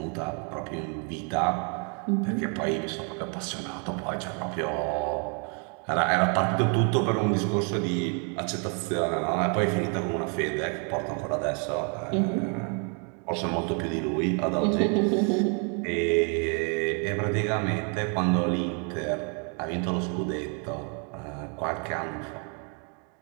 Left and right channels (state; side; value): quieter; left; 38.5 dB